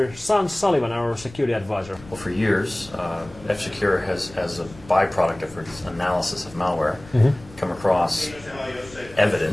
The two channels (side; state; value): left; noise; rumble, 20 dB below the sound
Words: Sean Sullivan, our security advisor. Well, for years, F-Secure has, as a byproduct of its analysis of malware, come across